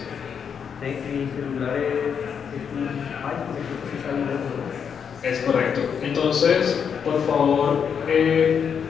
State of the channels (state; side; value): quieter; right; 7.2 dB